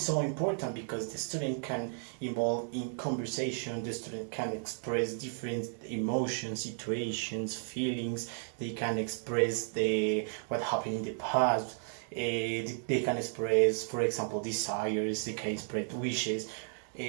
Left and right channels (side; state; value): left; silent; 55 dB below the other